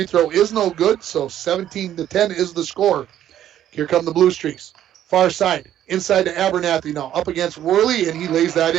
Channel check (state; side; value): quieter; left; 11.4 dB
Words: throw is no good, so 17-10 is the score. Here come the Blue Streaks. Far side, inside to Abernathy now, up against Worley, and he lays that